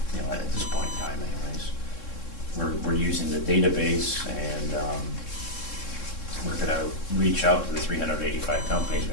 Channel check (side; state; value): right; late; 3.7 ms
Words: at this point in time anyways, we're using the database, and we're going to reach out to the 385 companies